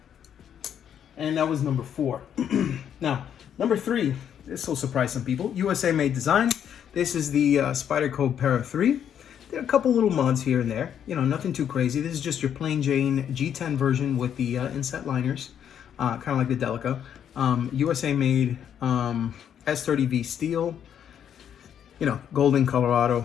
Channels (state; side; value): quieter; right; 9.0 dB